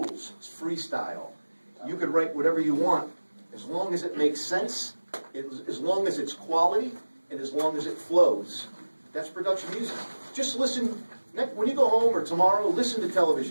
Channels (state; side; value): inverted; both; correlation -1.00